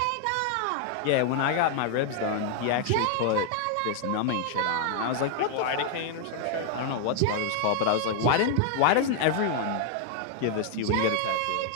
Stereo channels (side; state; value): both; different; correlation 0.00